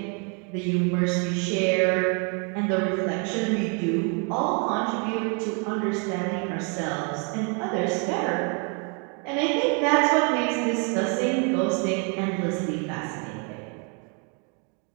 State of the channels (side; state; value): left; quieter; 37.0 dB